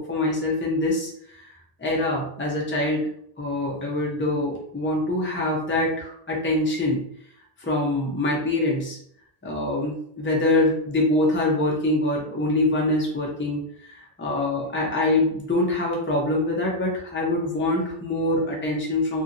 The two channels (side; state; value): both; normal; correlation 0.03